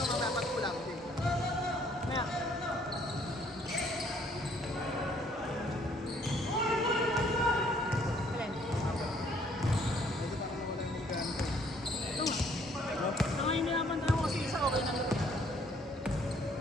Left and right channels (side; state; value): both; normal; correlation 0.63